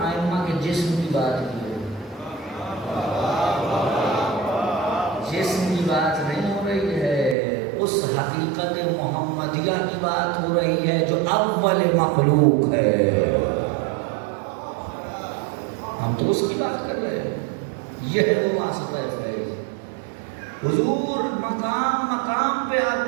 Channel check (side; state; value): left; drops out; at 7.4 s